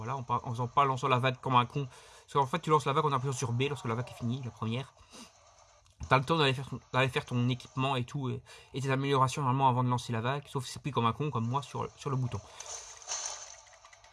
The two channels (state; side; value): identical; both; correlation 1.00